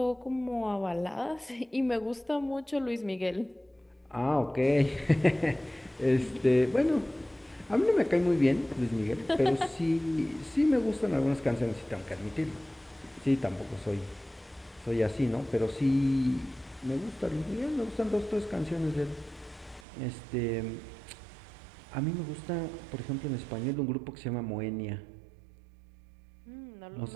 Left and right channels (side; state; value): left; drops out; at 19.9 s